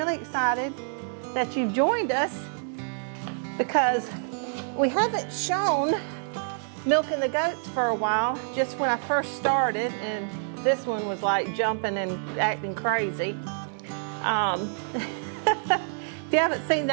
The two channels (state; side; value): silent; left; 59 dB below the other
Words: excited that you've joined us because we haven't shown milking the goats for a while, just when I first started, and this one was like jumping and acting crazy. If you haven't seen